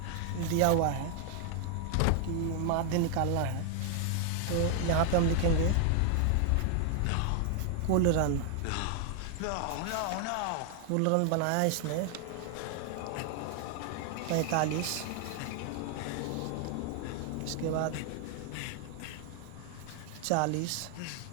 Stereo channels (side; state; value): both; different; correlation 0.00